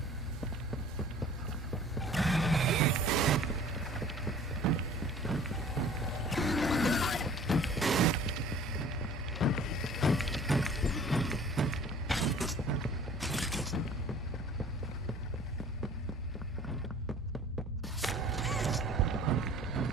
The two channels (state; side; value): normal; both; correlation 0.48